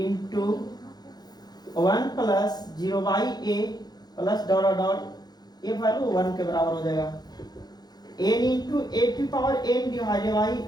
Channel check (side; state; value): right; late; 0.19 ms